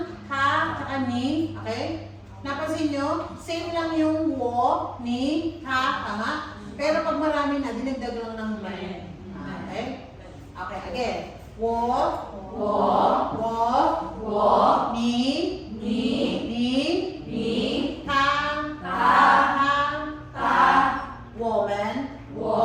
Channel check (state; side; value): identical; both; correlation 1.00